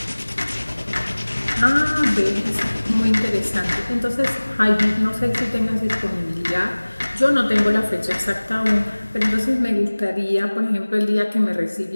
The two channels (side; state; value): both; inverted; correlation -1.00